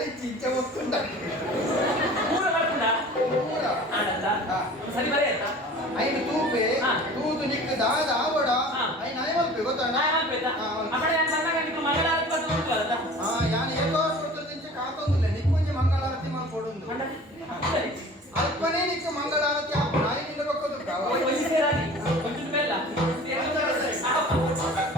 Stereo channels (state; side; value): normal; both; correlation 0.43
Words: ಚಿಂತೆ ಒತ್ತುಂಡ ಮೂರ ಬರ್ಕೊಂಡ ಪೂರ ಆಡಲ್ಲ ಹಾ. ಸರಿ ಬರೀ ಆಯ್ತಾ ಐನು ತೂಪೆ ಹಾ. ತೂತು ನಿಕ್ಕ ದಾದ ಆವಡ ಹಾ. ಐನು ನಾಯಿ ಮಲ್ಪೆ ಗೊತ್ತಾಣ ಅಮ್ಮಡೆ ಮಂಗಳಾರತಿ ಬರ್ತಾ ಉಂಟಲ್ಲ ಯಾನು ಎಲ್ಲೋ ಕೊಡ್ತದಿಂಚ ಕಾತೊಂದಿಲ್ಲ ನಿಕ್ಕೊಂಜಿ ಮಂಗಳಾರತಿ ಮಾಡ್ಕೊಡೊಂದು ಅಲ್ಪನೇ ನಿಕ್ಕ ಮಂಗಳಾರತಿ ಆಪ ನಾಯಿ ನಿಂದ ಬಕ್ಕೋದು